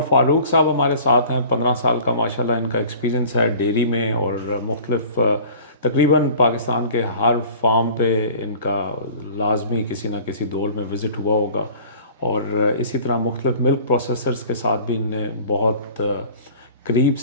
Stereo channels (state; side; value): inverted; both; correlation -0.45